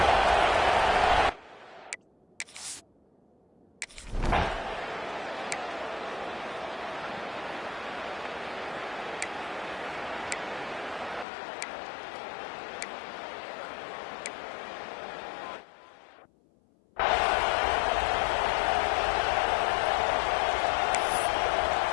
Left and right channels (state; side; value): drops out; right; at 11.2 s